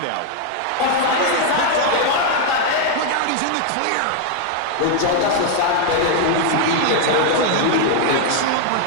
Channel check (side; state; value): both; different; correlation 0.00